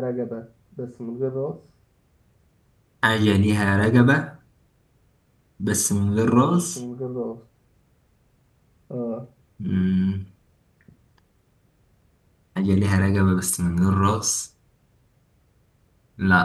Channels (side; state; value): both; identical; correlation 1.00